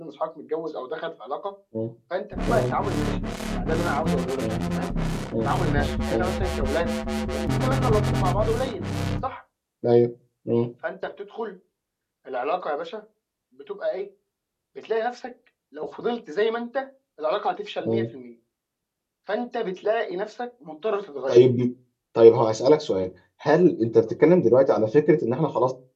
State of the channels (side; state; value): both; identical; correlation 1.00